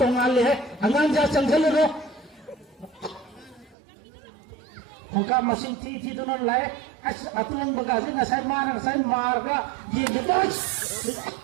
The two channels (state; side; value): drops out; left; at 3.8 s